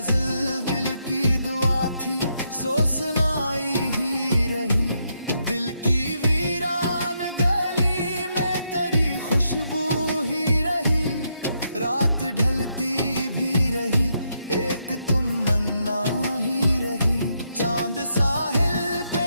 दिल की दुआ थी सो सुनाई ही रही। दिल की वीरान गली में तेरी खुशबू ही रही, रात ढलती भी रही, एक तुम मन्ना ही रही। चांद साहिल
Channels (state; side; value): inverted; both; correlation -0.79